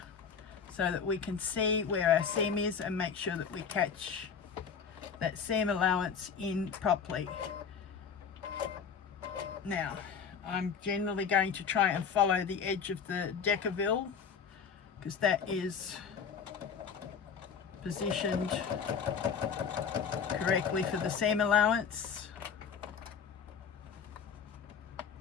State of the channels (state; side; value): quieter; right; 6.6 dB